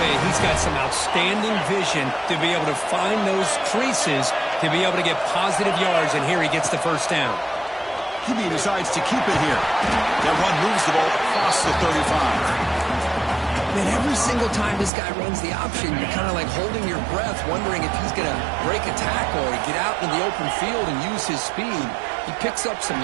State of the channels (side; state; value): left; drops out; at 14.9 s